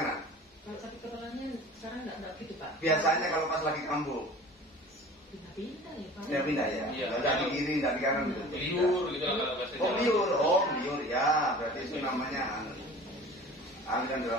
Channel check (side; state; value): both; normal; correlation 0.42